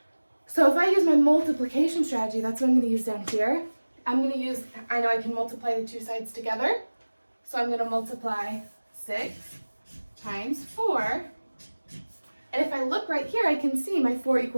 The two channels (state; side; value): inverted; both; correlation -1.00